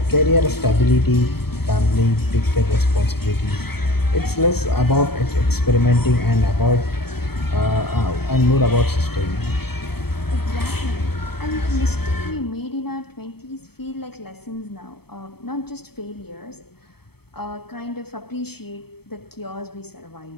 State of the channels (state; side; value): late; right; 0.97 ms